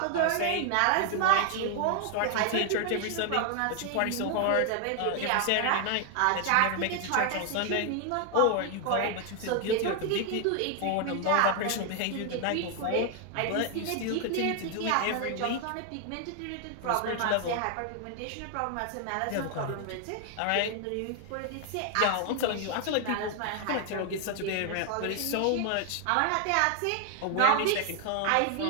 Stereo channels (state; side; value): different; both; correlation 0.00